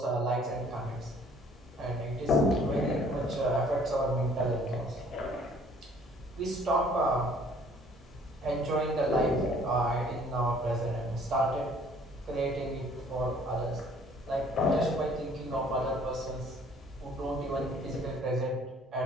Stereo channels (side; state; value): both; normal; correlation 0.57